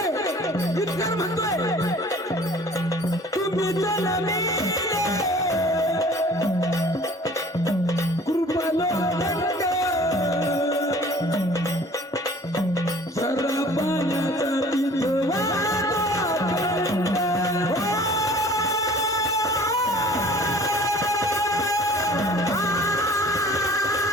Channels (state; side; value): normal; both; correlation 0.49